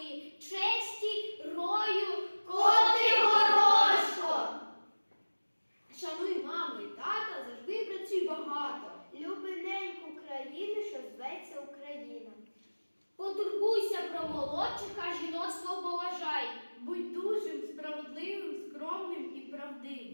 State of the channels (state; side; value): inverted; both; correlation -1.00